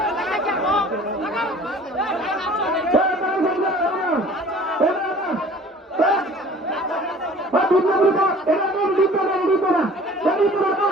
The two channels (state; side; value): normal; both; correlation 0.48